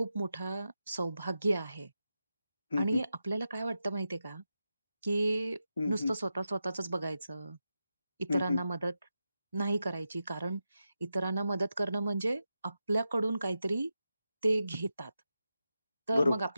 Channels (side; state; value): both; inverted; correlation -0.89